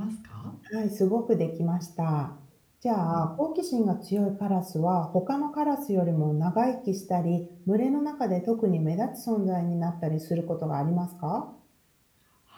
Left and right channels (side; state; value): both; identical; correlation 1.00